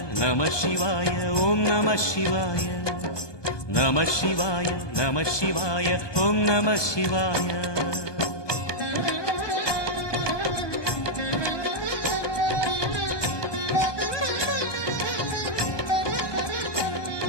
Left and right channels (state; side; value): late; right; 1.2 ms